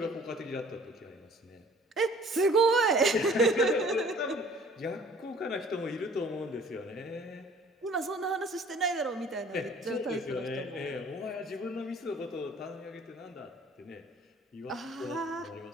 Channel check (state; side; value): normal; both; correlation 0.53